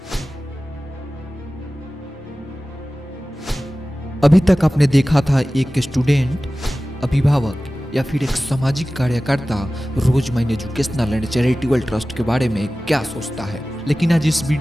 अभी तक आपने देखा था एक स्टूडेंट, अभिभावक या फिर एक सामाजिक कार्यकर्ता रोजमैन एजुकेशनल एंड चैरिटेबल ट्रस्ट के बारे में क्या सोचता है। लेकिन आज इस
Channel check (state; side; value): normal; both; correlation 0.96